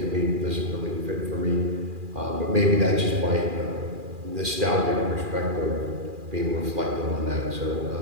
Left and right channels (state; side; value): late; left; 2.4 ms